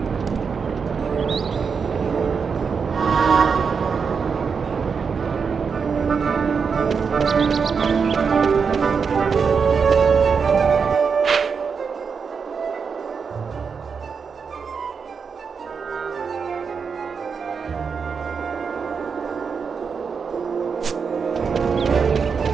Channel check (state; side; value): quieter; left; 5.8 dB